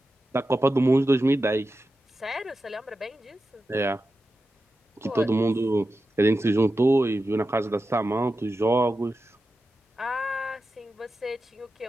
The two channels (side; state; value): both; normal; correlation 0.91